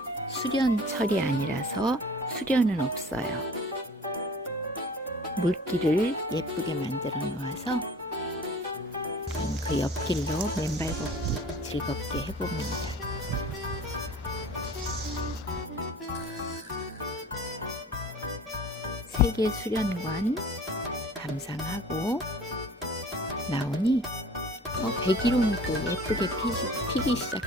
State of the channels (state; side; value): normal; both; correlation 0.45